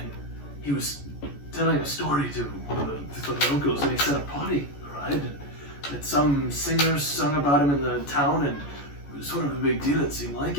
he was telling a story to one of the locals, and he said a party arrived, and that some singers sung about him in the town, and it was sort of a big deal, it seemed like,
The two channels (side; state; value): right; late; 14 ms